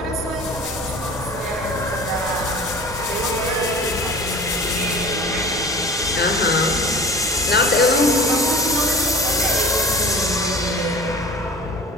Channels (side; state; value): both; normal; correlation 0.40